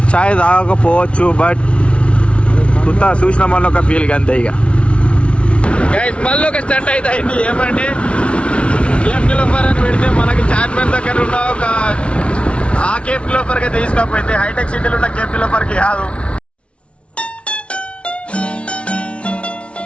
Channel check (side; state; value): right; late; 0.060 ms